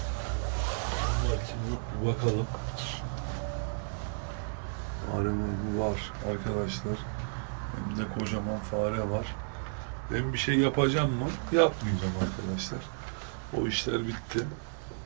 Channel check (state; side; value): silent; left; 56 dB below the other